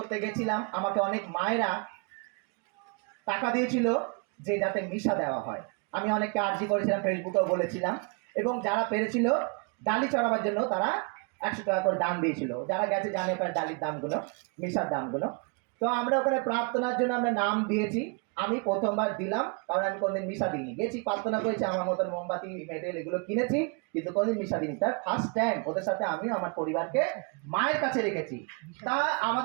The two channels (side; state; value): left; quieter; 32.9 dB